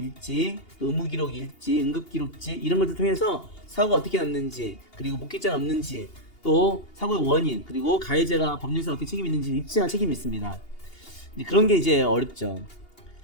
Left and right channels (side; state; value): right; late; 2.8 ms